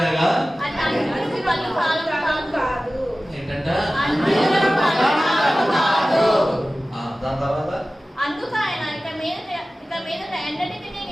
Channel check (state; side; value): normal; both; correlation 0.96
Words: పళ్ళు కాదు. ఏంటంట? దాని తర్వాత అందుకు ఆయన ఇక మీద ఎండటికి